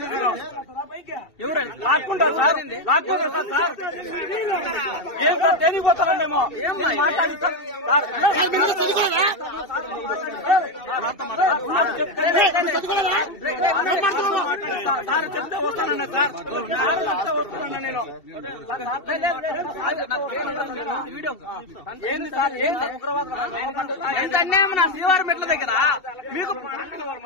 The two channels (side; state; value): right; late; 2.7 ms